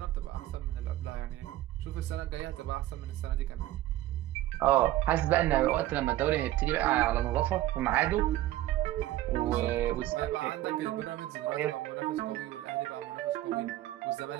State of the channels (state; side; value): quieter; left; 14.9 dB